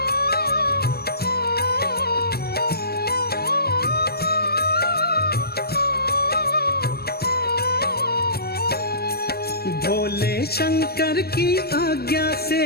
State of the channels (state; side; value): late; right; 0.46 ms